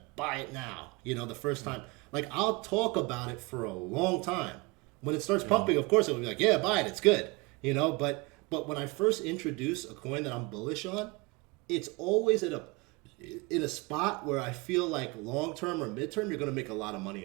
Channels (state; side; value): quieter; left; 26.2 dB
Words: Buy it now." The first time. Like I'll talk about it for a long time. When it starts pumping, of course, it will be like, yeah, buy it. It's good. But when I first introduce a coin that I'm bullish on, it's always in a spot where I feel like long term or midterm you're going to make a lot of money